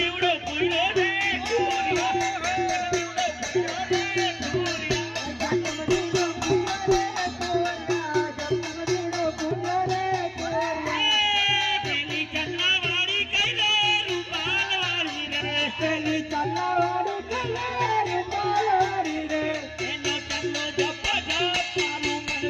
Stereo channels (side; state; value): both; identical; correlation 1.00